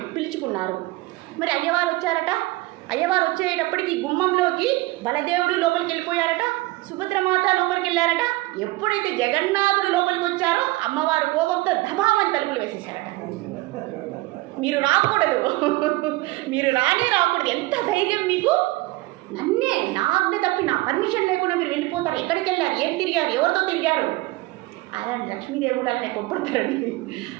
మరి అయ్యవారు వచ్చారట. అయ్యవారు వచ్చేటప్పటికి గుమ్మంలోకి బలదేవుడు లోపలికి వెళ్ళిపోయారట, సుభద్రమాత లోపలికి వెళ్ళారట. ఎప్పుడైతే జగన్నాథుడు లోపలికి వచ్చారో అమ్మవారు కోపంతో దబామని తలుపులు వేసేసారట. మీరు రాకూడదు, మీరు రాకూడదు. ఎంత ధైర్యం మీకు! నన్నే, నా ఆజ్ఞ తప్పి, నా పర్మిషన్ లేకుండా మీరు వెళ్ళిపోతారు. ఎక్కడికి వెళ్ళారు, ఏం తిరిగారు, ఎవరితో తిరిగారు? అలాంటి లక్ష్మీదేవుడు అలానే కొప్పడతారండి,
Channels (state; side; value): quieter; left; 20.7 dB